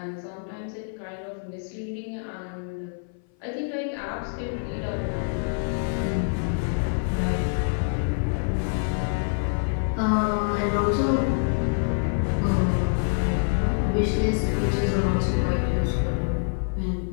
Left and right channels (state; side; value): silent; right; 57 dB below the other